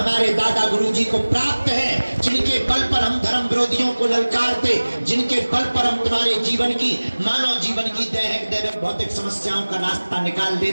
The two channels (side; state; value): both; inverted; correlation -1.00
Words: दादा गुरुजी को प्राप्त है, जिनके बल पर हम धर्म विरोधियों को ललकारते, जिनके बल पर हम तुम्हारे जीवन की, मानव जीवन की दैहिक दैविक भौतिक समस्याओं का रास्ता निकाल